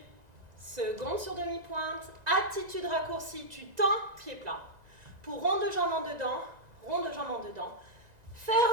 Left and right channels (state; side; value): late; left; 1.9 ms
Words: Seconde sur demi-pointe. Attitude raccourcie. Tu tends, pied plat. Pour rond de jambe en dedans. Rond de jambe en dedans.